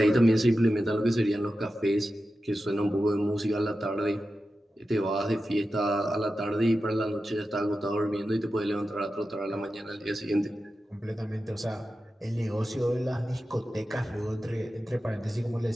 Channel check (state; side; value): normal; both; correlation 0.92